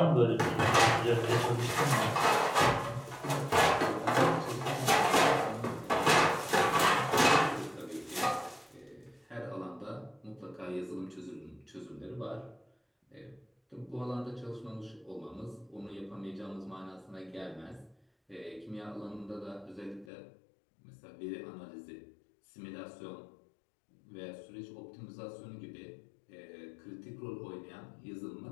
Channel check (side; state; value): right; drops out; at 20.1 s